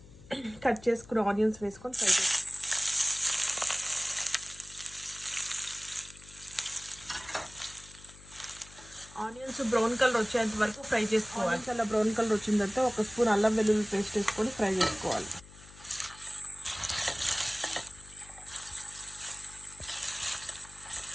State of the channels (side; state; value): left; noise; hum, 20 dB below the sound